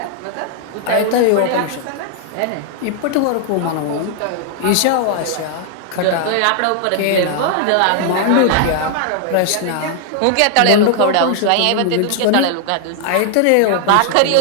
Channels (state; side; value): different; both; correlation 0.00